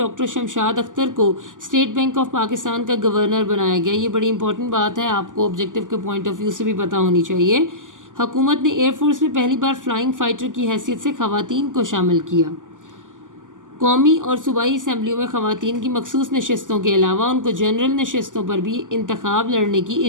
شمشاد اختر کو اسٹیٹ بینک آف پاکستان کا گورنر بنایا گیا۔ یہ بڑی امپورٹنٹ بات ہے، آپ کو آبجیکٹو کے پوائنٹ آف ویو سے بھی پتہ ہونی چاہیے۔ حکومت نے ایئر فورس میں پہلی بار فلائنگ فائٹر کی حیثیت سے خواتین کو شامل کیا۔ قومی اور صوبائی اسمبلیوں میں خواتین کی مخصوص نشستوں کے علاوہ ان کو جنرل نشستوں پر بھی انتخاب لڑنے کی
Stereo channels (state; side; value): late; left; 0.88 ms